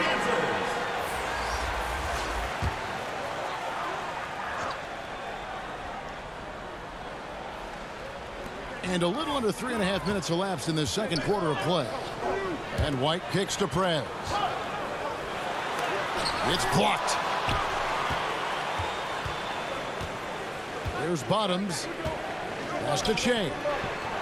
And a little under 3.5 minutes elapsed in the second quarter of play. And White kicks to Prez. It's blocked. There's Bottoms. Pass to Che.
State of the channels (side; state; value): both; identical; correlation 1.00